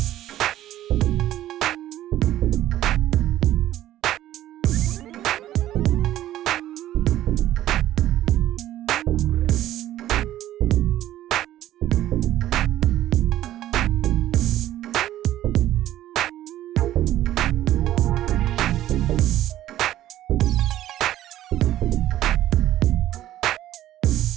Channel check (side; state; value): left; quieter; 13.4 dB